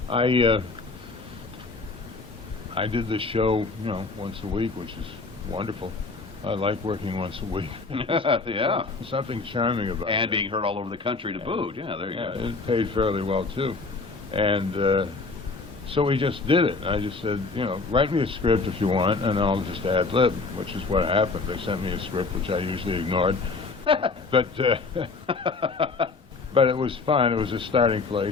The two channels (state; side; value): quieter; right; 4.0 dB